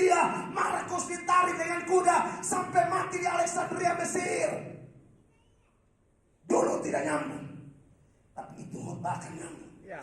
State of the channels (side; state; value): both; identical; correlation 1.00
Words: Markus ditarik dengan kuda sampai mati di Alexandria, Mesir. Dulu tidak nyambung, tapi itu khotbah akan nyambung.